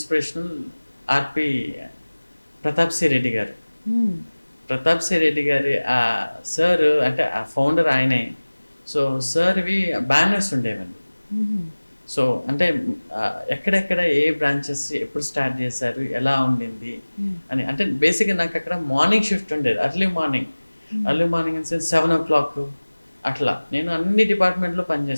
ఆర్పి ప్రతాప్ సి రెడ్డి గారు. ప్రతాప్ సి రెడ్డి గారి ఆ సార్ అంటే ఆ ఫౌండర్ ఆయనే. సో సార్వి బ్యానర్స్ ఉండేవండి. సో అంటే ఎక్కడెక్కడ ఏ బ్రాంచెస్ ఎప్పుడు స్టార్ట్ చేశారు, ఎలా ఉండింది అని. అంటే బేసిక్గా నాకు అక్కడ మార్నింగ్ షిఫ్ట్ ఉండేది, early morning in sense 7 o'clock అట్లా. నేను అన్ని డిపార్ట్మెంట్లో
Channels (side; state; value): both; inverted; correlation -1.00